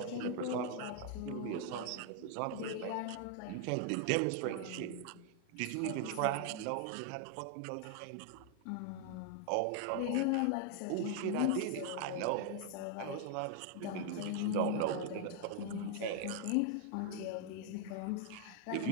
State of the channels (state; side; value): different; both; correlation 0.00